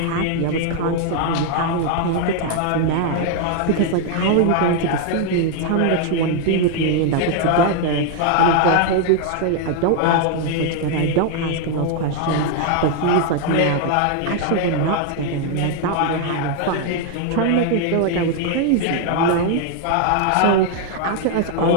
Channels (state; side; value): different; both; correlation 0.00